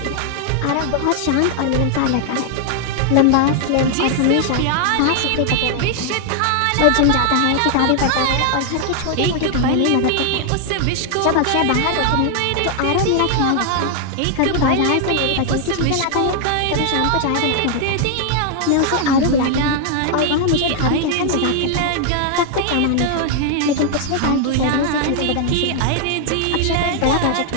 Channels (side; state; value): both; different; correlation 0.00